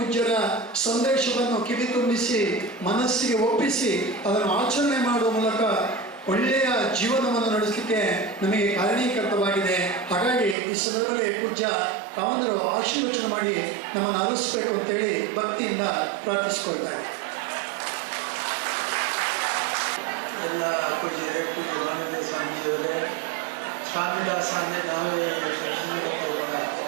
ಸಂದೇಶವನ್ನು ಕಿವಿ ತುಂಬಿಸಿ ಮನಸ್ಸಿಗೆ ಒಪ್ಪಿಸಿ ಅದನ್ನು ಆಚರಣೆ ಮಾಡುವ ಮೂಲಕ ಒಳ್ಳೆಯ ಜೀವನವನ್ನು ನಡೆಸಲಿಕ್ಕೆ ನಮಗೆ ಕಾರಣೀಕರ್ತವಾಗಿದೆ. ಹಾಗಾಗಿ ಈ ಸಂದರ್ಭದಲ್ಲಿ ಪೂಜ್ಯ ಕಾಮಂದರು ಆಶೀರ್ವಚನ ಮಾಡಿ ನಮ್ಮನ್ನು ಅರಳಿಸಬೇಕು ಅಂತೇಳಿ ಭಕ್ತಿಯಿಂದ ಪ್ರಾರ್ಥಿಸಿಕೊಳ್ತಾರೆ. ಎಲ್ಲ ಪೂಜ್ಯರೇ, ಪೂಜ್ಯ ಮಾನವ ಸ್ವಾಮೀಜಿಯವರೇ, ಸ್ವಾಮಿದಾಸ ಅಂದರೆ ನಾವೇ ಕೂಡ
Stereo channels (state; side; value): drops out; left; at 10.6 s